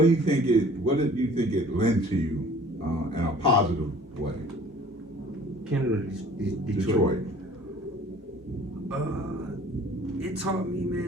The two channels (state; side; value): normal; both; correlation 0.50